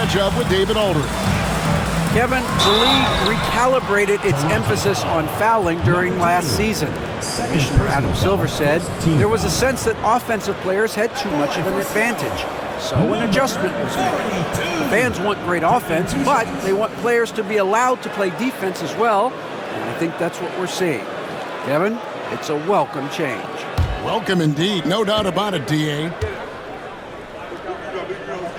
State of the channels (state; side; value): identical; both; correlation 1.00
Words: up with David Aldridge. Kevin, the league recalibrated its emphasis on fouling during last season. Commissioner Adam Silver said there was a sense that offensive players had too much of an advantage. So an adjustment was made. Fans want great offense, but they want players to be allowed to play defense as well. And I think that's what we're seeing. Kevin, it's a welcome change. Welcome indeed. No doubt about it, D.A.